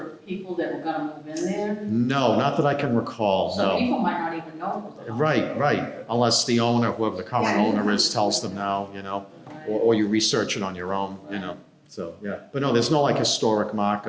people that were gonna move in there? No, not that I can recall, So no. people might not even know it was a Right, unless the owner, whoever the current Yeah. owner is, tells them now, you know, hospital. or you research it on your own, you know, so, yeah. But no, there's no like historic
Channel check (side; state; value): both; identical; correlation 1.00